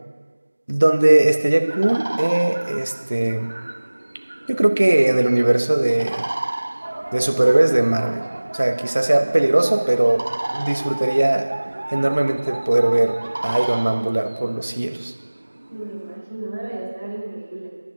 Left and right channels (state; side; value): inverted; both; correlation -1.00